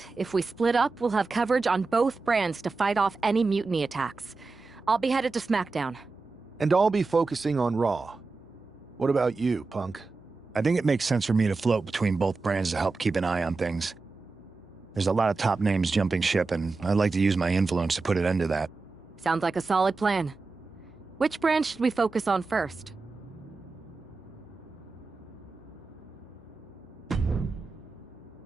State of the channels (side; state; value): left; quieter; 4.0 dB